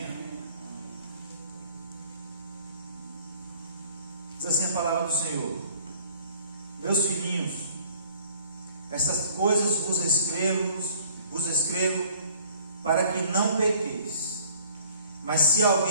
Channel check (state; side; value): inverted; both; correlation -0.54